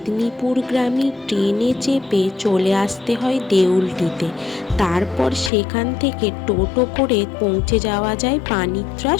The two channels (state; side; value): drops out; right; at 5.5 s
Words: ট্রেনে চেপে চলে আসতে হয় দেউলটিতে। তারপর সেখান থেকে টোটো করে পৌঁছে যাওয়া যায়